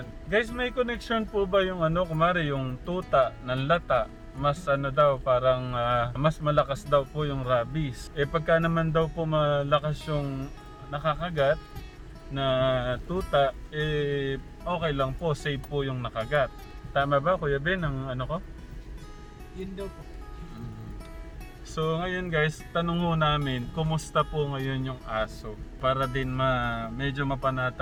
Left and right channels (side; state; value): both; identical; correlation 1.00